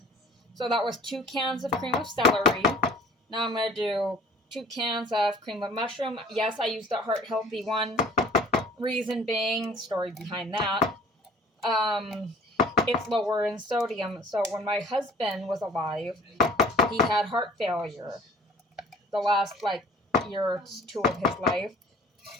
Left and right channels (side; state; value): both; normal; correlation 0.49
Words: So that was 2 cans of cream of celery. Now I'm going to do 2 cans of cream of mushroom. Yes, I used the heart healthy one. Reason being, story behind that, it's lower in sodium. So when my husband was alive, he had heart failure the last year or 2 of his life.